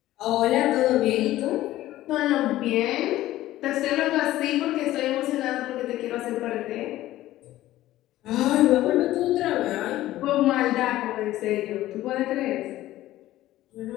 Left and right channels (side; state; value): right; quieter; 15.1 dB